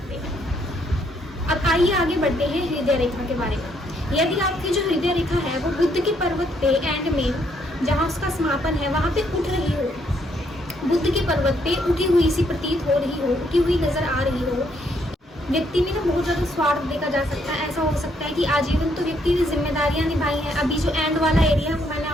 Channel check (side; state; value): both; normal; correlation 0.71